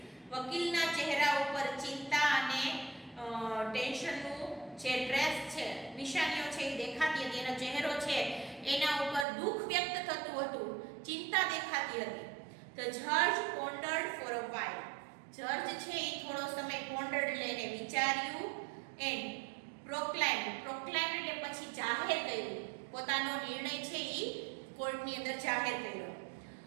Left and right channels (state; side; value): drops out; left; at 9.2 s